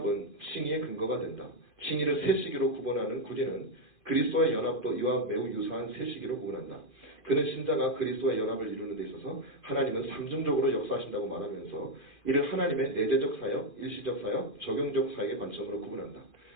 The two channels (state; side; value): late; right; 2.5 ms